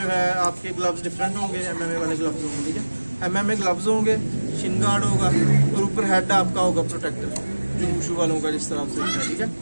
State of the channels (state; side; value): inverted; both; correlation -1.00